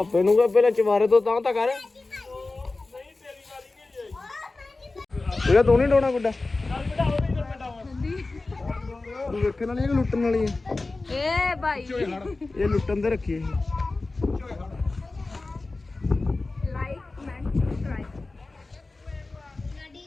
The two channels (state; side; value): quieter; right; 3.4 dB